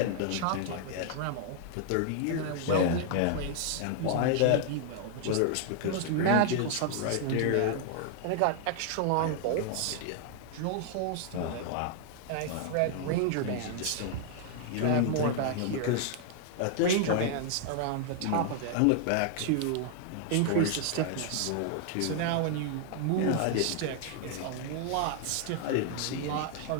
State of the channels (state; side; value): different; both; correlation 0.00